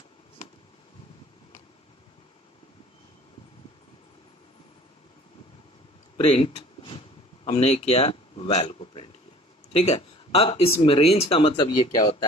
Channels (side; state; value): both; normal; correlation 0.48